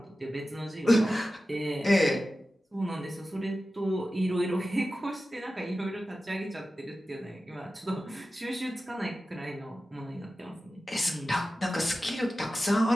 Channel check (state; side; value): normal; both; correlation 0.94